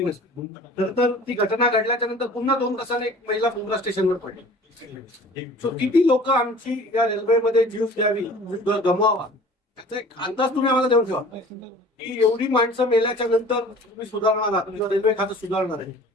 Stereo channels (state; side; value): normal; both; correlation 0.46